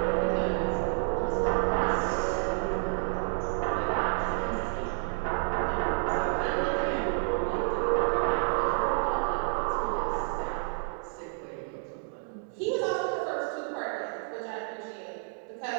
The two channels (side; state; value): left; silent; 58 dB below the other